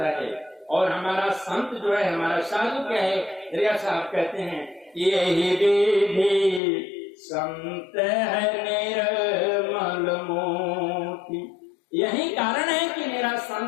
है। और हमारा संत जो है, हमारा साधु क्या है, दरिया साहब कहते हैं, यही विधि संत है निर्मल मोती। यही कारण है कि मेरा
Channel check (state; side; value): drops out; right; at 6.6 s